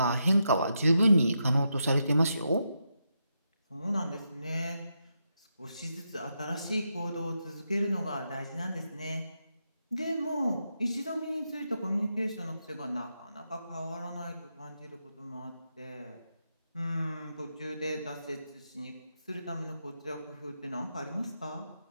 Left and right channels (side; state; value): both; inverted; correlation -0.84